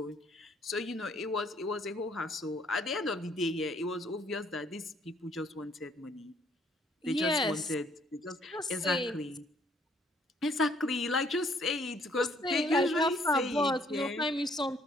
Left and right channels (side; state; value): both; normal; correlation 0.64